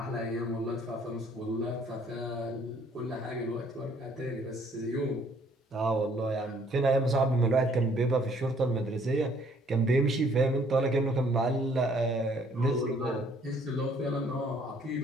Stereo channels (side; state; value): both; normal; correlation 0.62